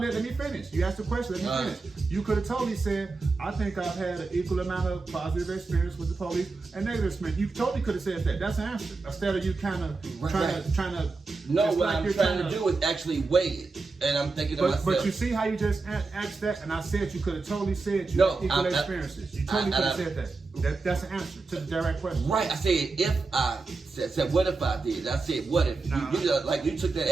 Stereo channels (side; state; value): left; quieter; 3.9 dB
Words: finish. You asked the question. Let me finish. You could have totally said I think I've had an equal amount of positive experience with the police and negative experience. You totally could have said that. That's an answer. Instead of you kind of trying to. No, what I'm trying to do is actually weigh it. And I'm thinking to myself. But you see how you just asked that, and I said you could have totally said you had equal experiences. You totally could have said that. That's an answer to the direct question. Right. I said if I said what if I did? I said what if? You took that